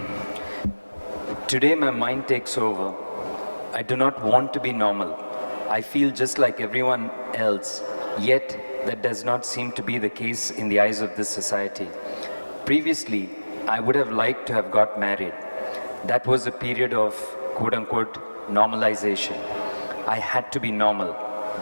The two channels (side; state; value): both; inverted; correlation -1.00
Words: Today my mind takes over. I do not want to be normal. I feel just like everyone else, yet that does not seem to be the case in the eyes of this society. Previously, I would have liked to have got married. That was a period of quote-unquote normalization. I had to be normal.